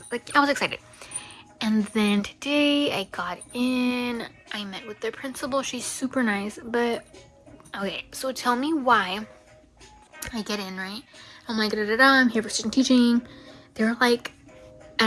like, I was excited. And then today I got in, I met with their principal. She's super nice, but okay, so tell me why I get in, right? I'm like, da da da, I'm here for student teaching. They're like,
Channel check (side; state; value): both; identical; correlation 1.00